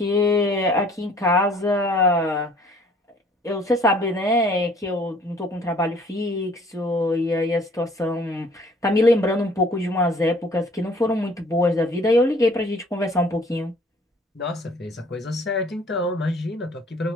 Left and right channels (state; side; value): normal; both; correlation 0.56